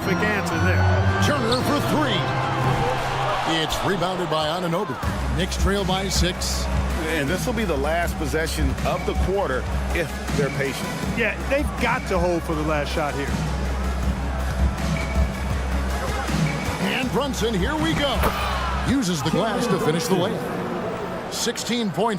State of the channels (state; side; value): identical; both; correlation 1.00